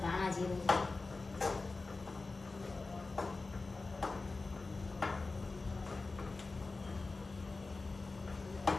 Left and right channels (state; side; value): quieter; right; 3.7 dB